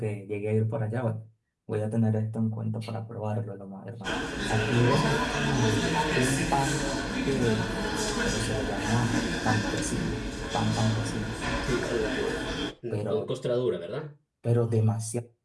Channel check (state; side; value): identical; both; correlation 1.00